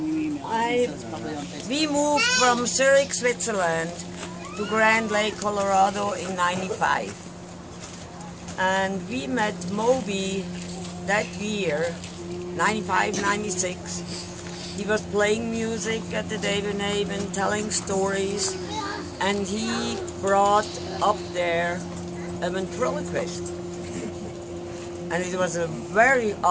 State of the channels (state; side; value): identical; both; correlation 1.00